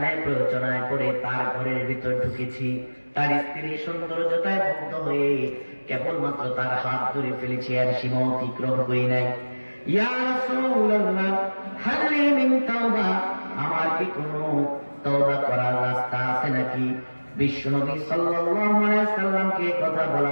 প্ররোচনায় পড়ে তার ঘরের ভিতর ঢুকেছি, তার স্ত্রী সৌন্দর্যতায় মুগ্ধ হয়ে কেবলমাত্র তার হাত ধরে ফেলেছি, আর সীমা অতিক্রম করি নাই। ইয়া রাসূলুল্লাহ, হাল লি মিন তাওবা, আমার কি কোনো তওবা করার রাস্তা আছে নাকি? বিশ্বনবী সাল্লাল্লাহু আলাইহি ওয়াসাল্লামকে কথা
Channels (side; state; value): both; inverted; correlation -1.00